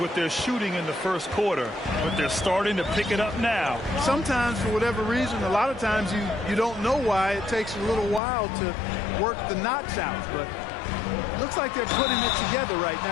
their shooting in the first quarter, but they're starting to pick it up now. Sometimes, for whatever reason, a lot of times you don't know why. It takes a little while to work the knots out, but looks like they're putting it together right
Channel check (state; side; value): drops out; right; at 8.2 s